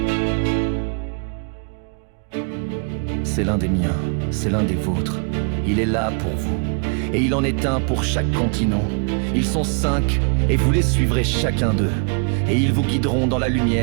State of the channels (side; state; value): left; quieter; 38.9 dB